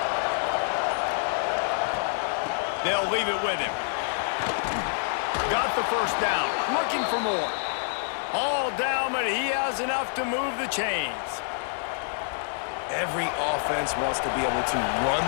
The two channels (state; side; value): silent; right; digital silence